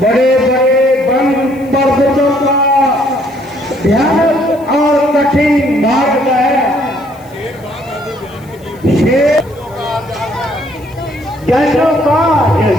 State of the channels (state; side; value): noise; left; hiss, 28 dB below the sound